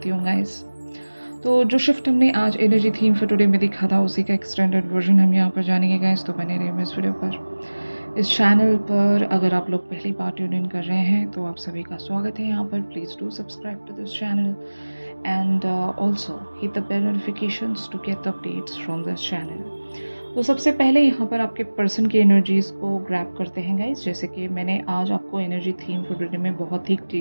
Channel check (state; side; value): inverted; both; correlation -1.00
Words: हूँ गाइस। तो जो शिफ्ट हमने आज एनर्जी थीम फॉर टुडे में दिखा था उसी का एक्सटेंडेड वर्जन हम यहाँ पर जानेंगे गाइस। तो बने रहिए इस वीडियो पर। इस चैनल पर अगर आप लोग पहली बार ट्यून इन कर रहे हैं तो आप सभी का स्वागत है यहाँ पर। Please do subscribe to this channel and also hit the bell notifications to get the updates from this channel. तो सबसे पहले यहाँ पर आपके पर्सन की एनर्जीज़ को ग्रैब करते हैं गाइस। जैसे कि मैंने आज आपको एनर्जी थीम फॉर टुडे में बहुत ही